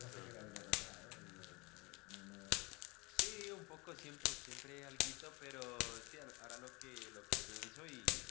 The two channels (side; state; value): right; quieter; 26.1 dB